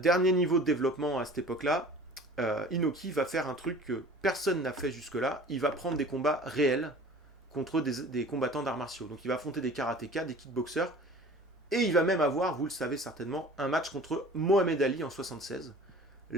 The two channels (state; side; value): normal; both; correlation 0.44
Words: niveau de développement à cette époque-là, Inoki va faire un truc que personne n'a fait jusque-là. Il va prendre des combats réels contre des combattants d'arts martiaux. Donc il va affronter des karatékas, des kickboxers, et il va même avoir, vous le savez certainement, un match contre Mohamed Ali en 76,